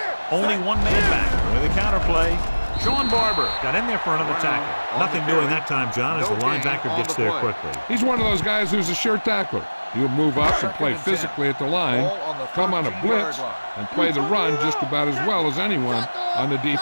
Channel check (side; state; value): both; inverted; correlation -1.00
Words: Only one man back with a counterplay. Sean Barber got in there for another tackle. Nothing doing that time, John, as the linebacker gets there quickly. He's one of those guys who's a sure tackler. He'll move up and play physically at the line, come on a blitz, and play the run just about as well as anyone on the